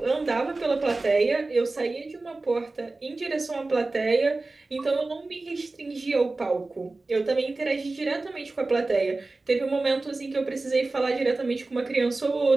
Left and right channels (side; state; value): left; quieter; 3.3 dB